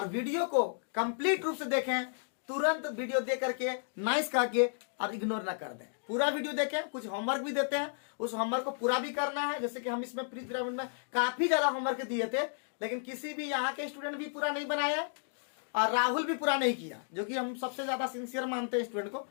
वीडियो को कंप्लीट रूप से देखें। तुरंत वीडियो देख करके नाइस कह के और इग्नोर ना कर दें। पूरा वीडियो देखें। कुछ होमवर्क भी देते हैं, उस होमवर्क को पूरा भी करना है। जैसे कि हम इसमें प्री पिरामिड में काफी ज्यादा होमवर्क दिए थे, लेकिन किसी भी यहाँ के स्टूडेंट भी पूरा नहीं बनाया और राहुल भी पूरा नहीं किया, जो कि हम सबसे ज्यादा सिंसियर मानते हैं स्टूडेंट को।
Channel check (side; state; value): right; silent; digital silence